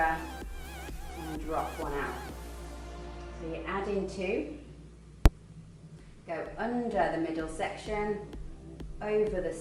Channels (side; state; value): both; identical; correlation 1.00